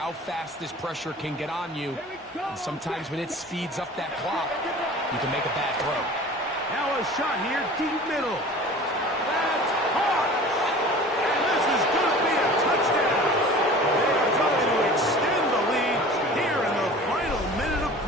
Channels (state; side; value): normal; both; correlation 0.42